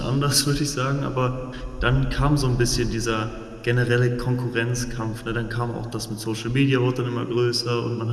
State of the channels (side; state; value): both; identical; correlation 1.00